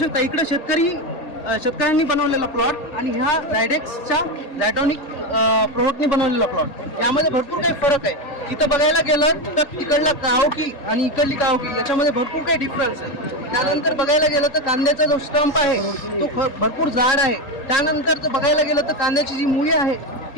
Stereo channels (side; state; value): right; late; 3.8 ms